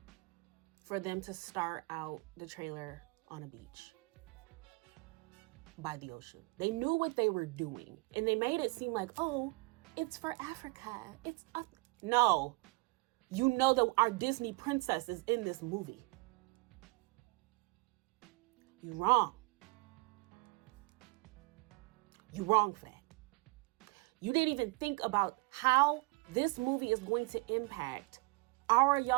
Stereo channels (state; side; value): quieter; left; 26.0 dB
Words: for them to start out the trailer on a beach by the ocean. They knew what they were doing, and they made it seem like, oh, it's for Africa. No, you know that our Disney princess is in this movie. You're wrong. You're wrong for that. You didn't even think about how this movie is going to impact our